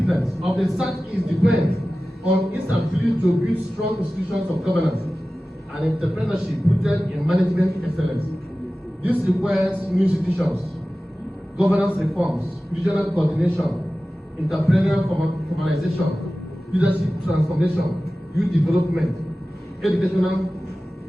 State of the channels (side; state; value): both; normal; correlation 0.96